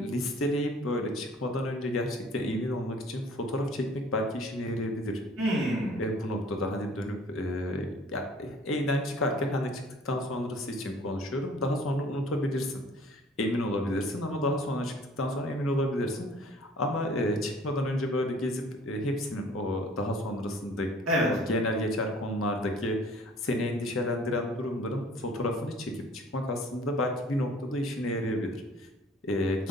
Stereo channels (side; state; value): both; normal; correlation 0.53